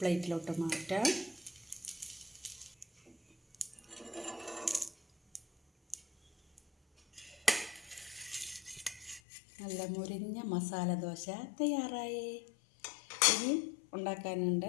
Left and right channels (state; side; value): drops out; right; at 9.2 s